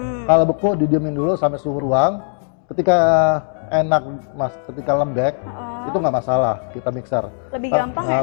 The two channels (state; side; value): silent; right; digital silence